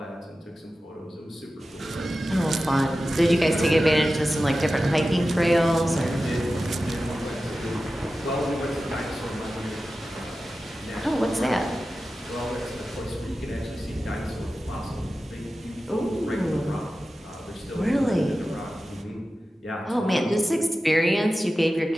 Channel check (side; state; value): both; normal; correlation 0.94